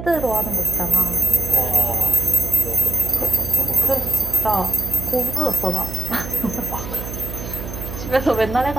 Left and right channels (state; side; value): noise; right; hum, 9 dB below the sound